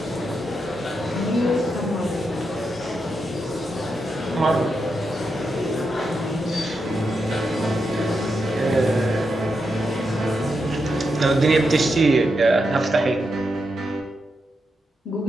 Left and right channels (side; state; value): both; normal; correlation 0.85